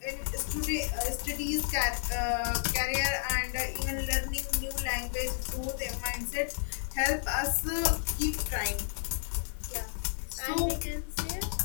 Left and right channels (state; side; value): silent; right; digital silence